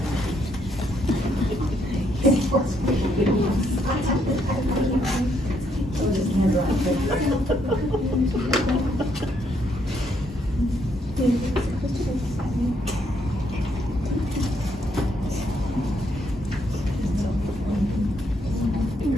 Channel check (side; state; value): both; normal; correlation 0.73